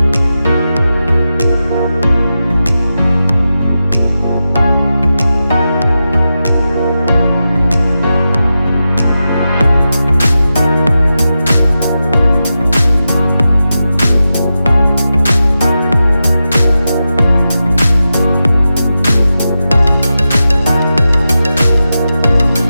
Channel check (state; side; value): inverted; both; correlation -0.91